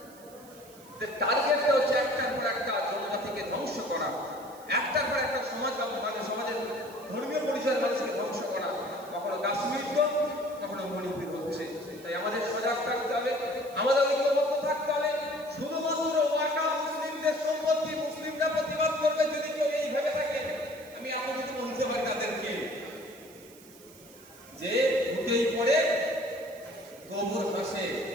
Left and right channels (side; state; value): right; noise; hiss, 23 dB below the sound